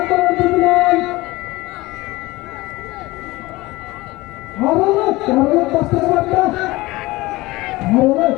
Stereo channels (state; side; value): quieter; right; 20.3 dB